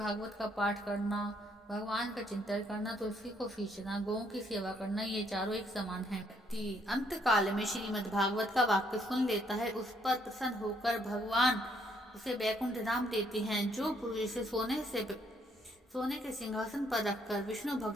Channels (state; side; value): normal; both; correlation 0.70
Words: का पाठ करना, भगवान का चिंतन करना, तुलसी को सींचना, गौं की सेवा करना, ये चारों एक समान है। अंत काल में श्रीमद् भागवत का वाक्य सुन लेता है, उस पर प्रसन्न होकर भगवान उसे वैकुंठ धाम देते हैं। जो पुरुष इसे सोने के सिंहासन पर रखकर विष्णु